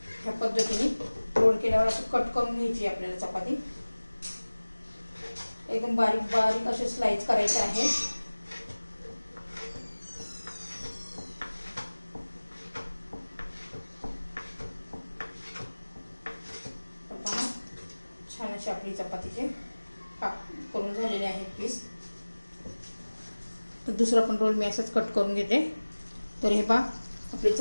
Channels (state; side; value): inverted; both; correlation -1.00